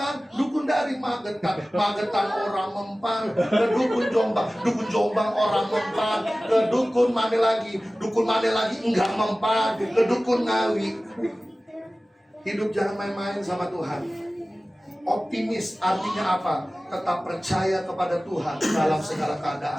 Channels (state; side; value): normal; both; correlation 0.97